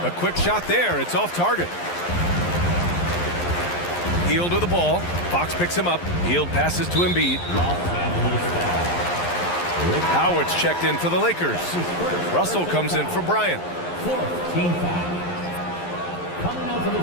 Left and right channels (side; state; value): right; late; 11 ms